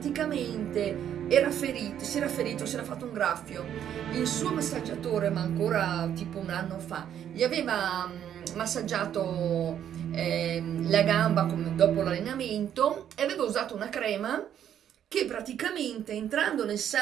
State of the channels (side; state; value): left; quieter; 9.9 dB